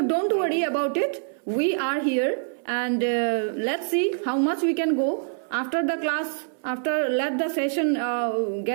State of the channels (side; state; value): left; silent; 62 dB below the other